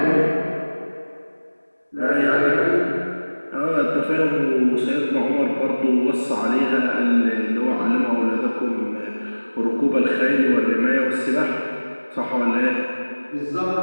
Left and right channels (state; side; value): inverted; both; correlation -1.00